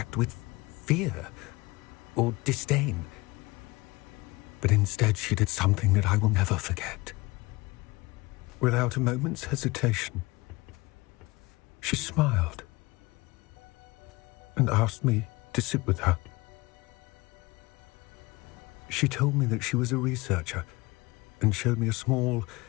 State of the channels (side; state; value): right; quieter; 22.9 dB